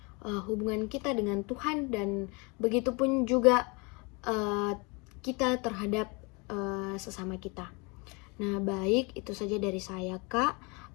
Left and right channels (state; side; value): quieter; right; 29.7 dB